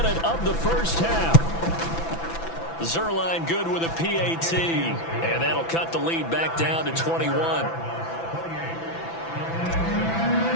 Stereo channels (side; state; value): right; late; 6.0 ms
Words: of the first half. Zerline good with a PAT. And that'll cut the lead back down to 21. Now